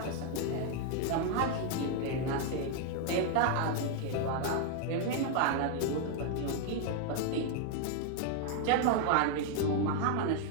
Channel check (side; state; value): both; different; correlation 0.01